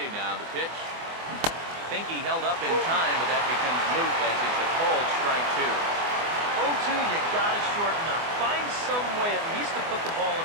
now. The pitch. Think he held up in time, but that becomes moot as it's a called strike two. 0-2, you gotta shorten up. Find some way at least to put the ball in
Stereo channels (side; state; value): left; late; 24 ms